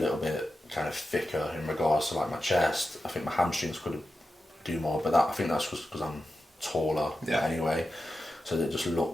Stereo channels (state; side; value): normal; both; correlation 0.91